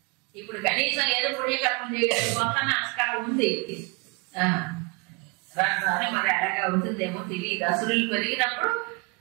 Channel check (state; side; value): quieter; left; 30.0 dB